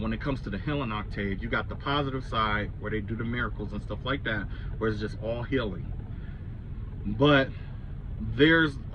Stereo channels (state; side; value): identical; both; correlation 1.00